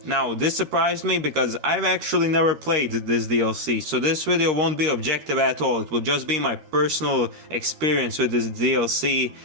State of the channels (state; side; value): late; left; 13 ms